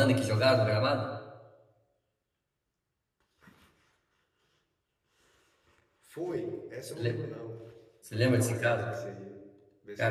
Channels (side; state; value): both; identical; correlation 1.00